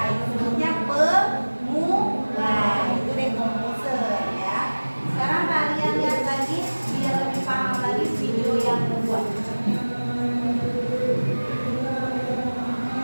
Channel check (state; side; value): inverted; both; correlation -1.00